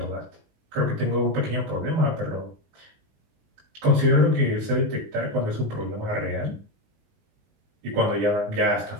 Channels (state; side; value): late; left; 19 ms